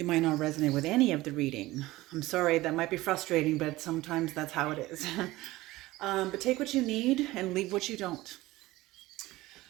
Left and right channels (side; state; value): left; quieter; 18.3 dB